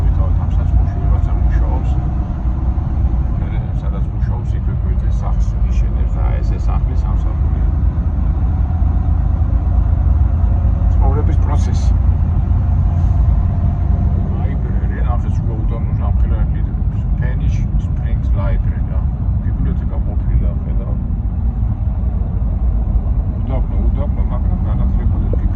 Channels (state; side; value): identical; both; correlation 1.00